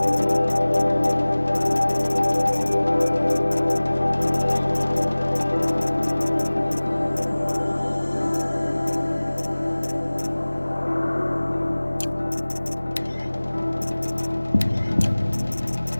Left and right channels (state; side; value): inverted; both; correlation -1.00